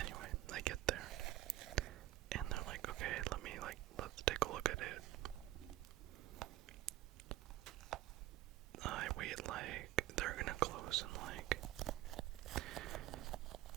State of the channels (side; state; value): left; quieter; 14.9 dB